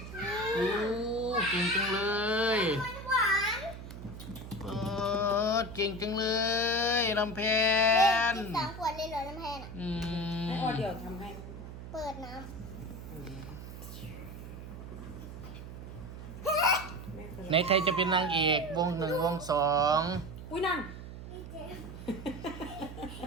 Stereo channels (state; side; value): noise; right; hum, 11 dB below the sound